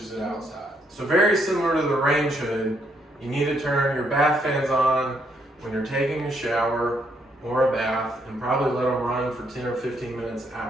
it outside. So very similar to the range hood, you need to turn your bath fans on when you're taking a shower or a bath, and probably let them run for 10 or 15 minutes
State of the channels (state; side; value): normal; both; correlation 0.73